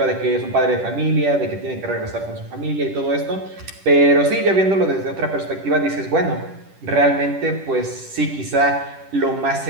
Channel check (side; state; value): left; late; 10 ms